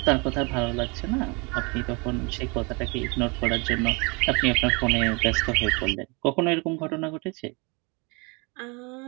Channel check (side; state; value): left; quieter; 29.8 dB